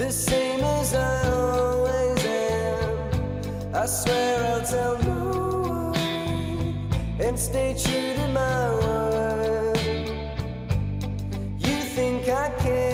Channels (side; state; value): both; identical; correlation 1.00